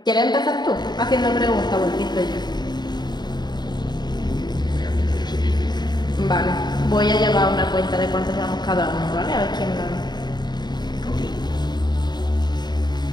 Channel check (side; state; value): right; late; 0.21 ms